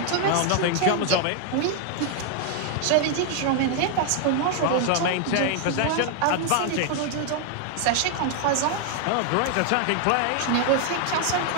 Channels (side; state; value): both; different; correlation 0.00